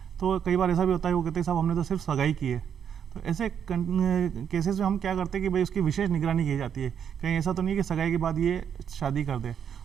तो कई बार ऐसा भी होता है वो कहते हैं साहब हमने तो सिर्फ सगाई की है। तो ऐसे केसेस में हम क्या करते हैं कि भाई उसकी विशेष निगरानी की जाती है, कहीं ऐसा तो नहीं है कि सगाई के बाद ये शादी कर दे।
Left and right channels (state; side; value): quieter; left; 8.2 dB